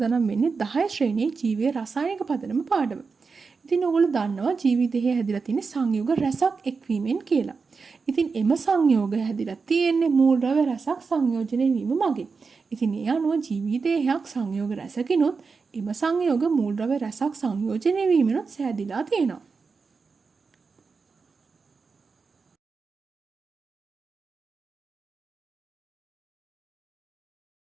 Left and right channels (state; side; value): quieter; left; 4.8 dB